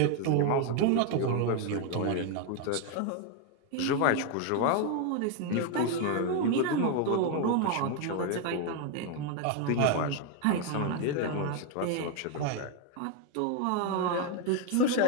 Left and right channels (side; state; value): both; different; correlation 0.01